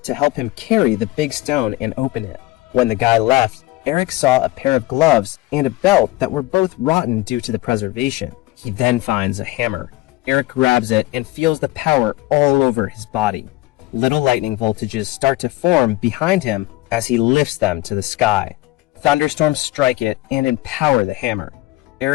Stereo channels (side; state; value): right; quieter; 18.7 dB